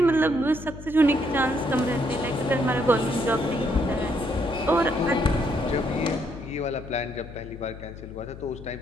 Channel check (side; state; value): left; noise; hum, 14 dB below the sound